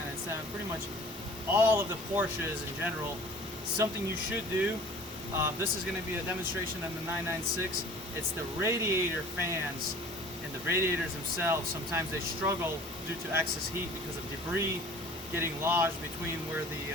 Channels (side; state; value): both; normal; correlation 0.47